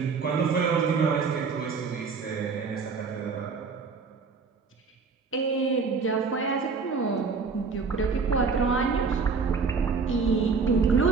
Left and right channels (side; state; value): left; quieter; 5.0 dB